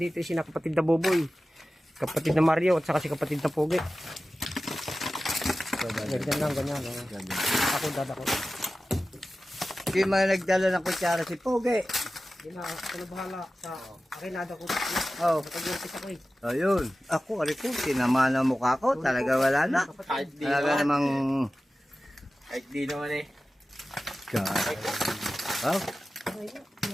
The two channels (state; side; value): normal; both; correlation 0.95